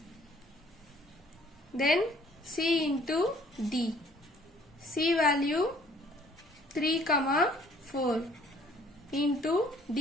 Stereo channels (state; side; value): normal; both; correlation 0.58